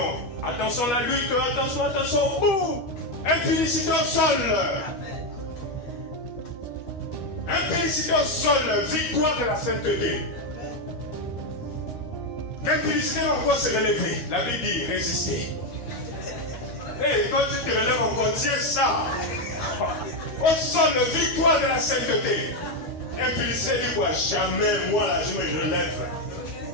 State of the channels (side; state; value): right; late; 12 ms